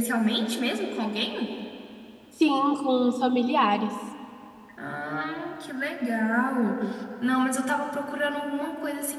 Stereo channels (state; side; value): identical; both; correlation 1.00